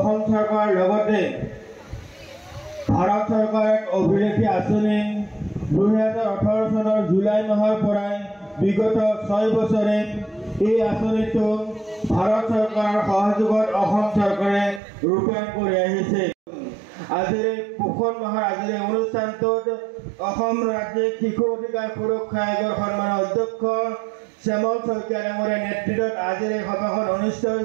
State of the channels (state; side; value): drops out; left; at 14.8 s